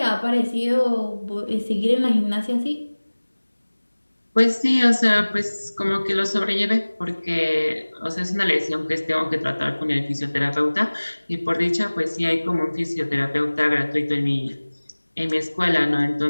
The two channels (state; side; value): inverted; both; correlation -1.00